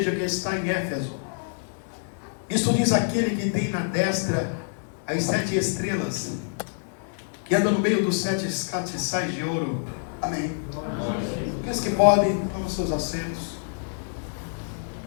que está em Éfeso, isto diz aquele que tem na destra as 7 estrelas, que anda no meio dos 7 castiçais de ouro. Amém. Aqueles que podem, tomem seus assentos.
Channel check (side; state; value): right; silent; 61 dB below the other